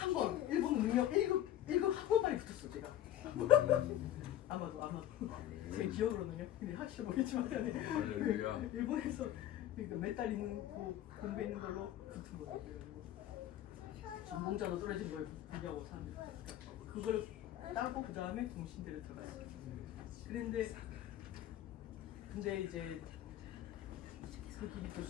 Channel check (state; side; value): quieter; right; 12.3 dB